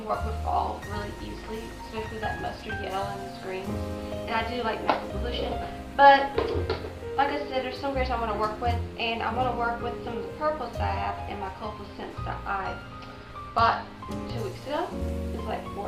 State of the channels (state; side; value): identical; both; correlation 1.00